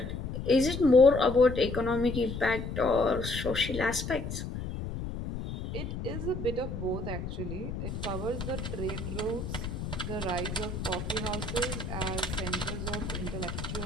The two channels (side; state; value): left; noise; rumble, 6 dB below the sound